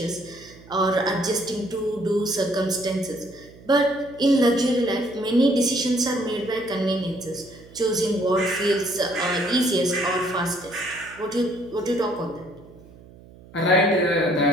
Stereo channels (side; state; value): right; noise; hum, 22 dB below the sound